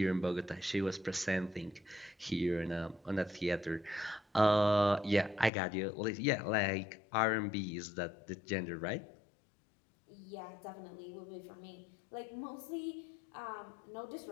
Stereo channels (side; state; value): right; drops out; at 5.5 s